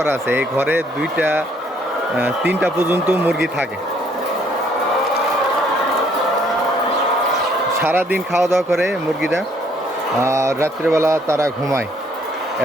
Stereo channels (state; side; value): normal; both; correlation 0.65